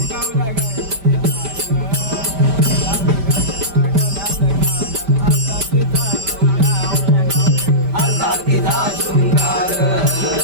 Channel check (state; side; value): late; left; 5.1 ms